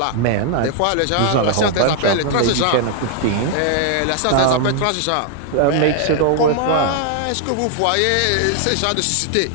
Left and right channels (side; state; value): both; different; correlation 0.00